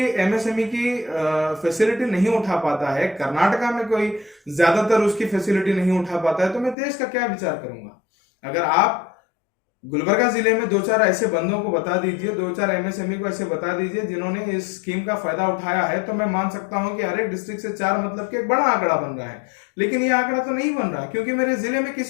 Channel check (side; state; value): right; drops out; at 6.8 s